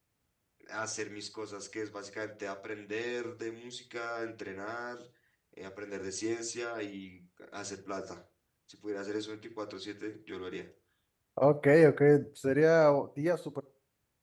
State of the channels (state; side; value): identical; both; correlation 1.00